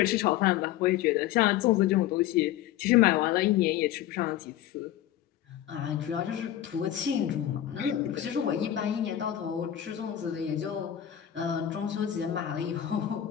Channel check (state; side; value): quieter; right; 11.9 dB